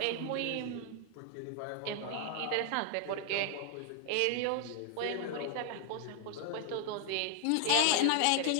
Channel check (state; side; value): different; both; correlation 0.00